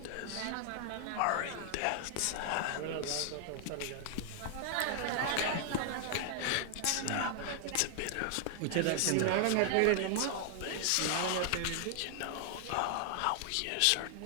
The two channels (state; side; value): different; both; correlation 0.00